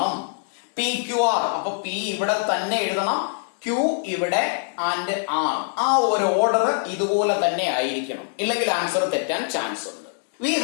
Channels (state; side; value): silent; right; 63 dB below the other